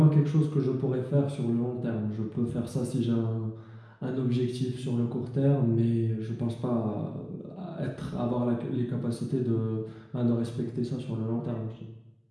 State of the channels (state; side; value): identical; both; correlation 1.00